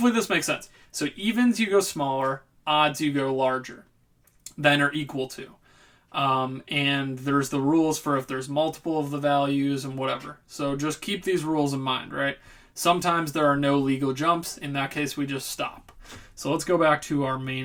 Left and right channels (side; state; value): both; identical; correlation 1.00